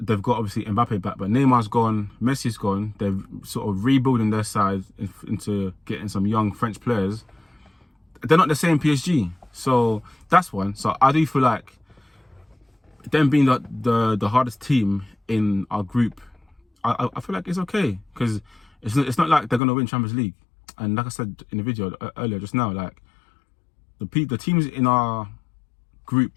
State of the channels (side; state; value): right; drops out; at 19.6 s